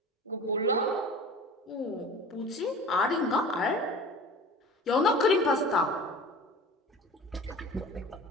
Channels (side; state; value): both; normal; correlation 0.39